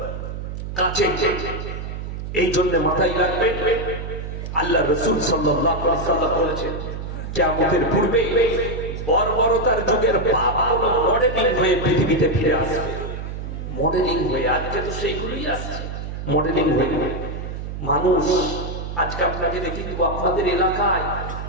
কাছে। এই জন্য মাথায় রাখবেন, আল্লাহ রাসূল সাল্লাল্লাহু আলাইহি ওয়াসাল্লাম বলেছেন কিয়ামতের পূর্বে বর্বরতার যুগের পাপগুলো মডেলিং হয়ে পৃথিবীতে ফিরে আসবে। মডেলিং হয়ে, আজকে তো সেইগুলোই আসছে মডেলিং হয়ে। মানুষ আজকে আপনাকে দেখে দিব, আপনাদের এলাকায়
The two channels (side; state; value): right; noise; hum, 7 dB below the sound